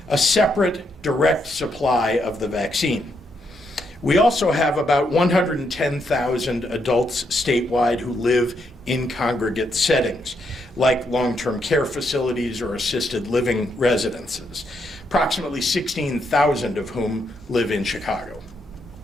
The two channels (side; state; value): both; normal; correlation 0.78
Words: a separate direct supply of the vaccine. We also have about 110,000 adults statewide who live in congregate settings, like long-term care facilities or assisted living residences, approximately 16,000 of whom live in Chicago.